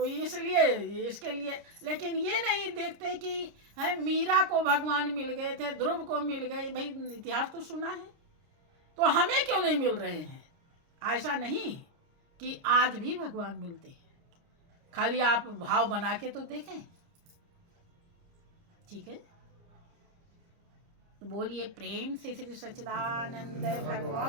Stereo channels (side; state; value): left; late; 29 ms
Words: इसलिए इसके लिए, लेकिन ये नहीं देखते कि है मीरा को भगवान मिल गए थे, ध्रुव को मिल गए। भाई इतिहास तो सुना है, तो हमें क्यों नहीं मिल रहे हैं। ऐसा नहीं कि आज भी भगवान मिलते हैं, खाली आप भाव बना के तो देखें। ठीक है, तो बोलिए प्रेम से श्री सच्चिदानंद